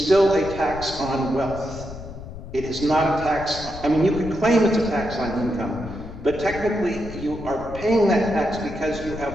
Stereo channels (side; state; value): left; noise; rumble, 12 dB below the sound